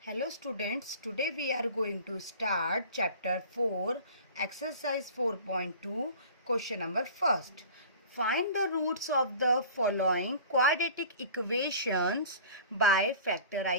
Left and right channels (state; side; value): inverted; both; correlation -0.41